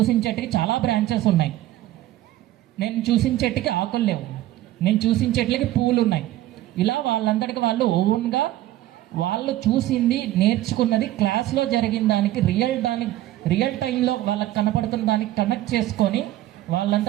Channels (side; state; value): left; quieter; 14.7 dB